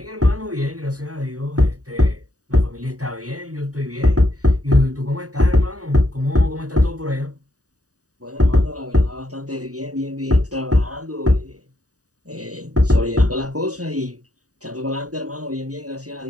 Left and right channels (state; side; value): late; left; 0.66 ms